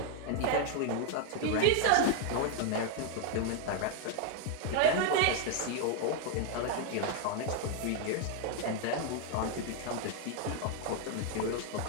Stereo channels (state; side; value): different; both; correlation 0.00